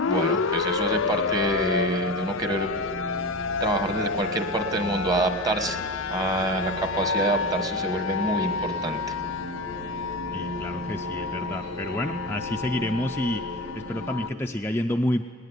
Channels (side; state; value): both; normal; correlation 0.27